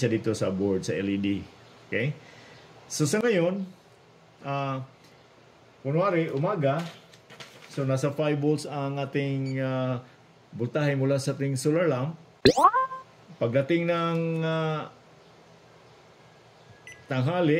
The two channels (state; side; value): identical; both; correlation 1.00